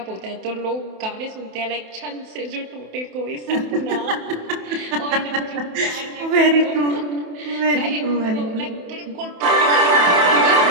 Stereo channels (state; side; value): late; left; 28 ms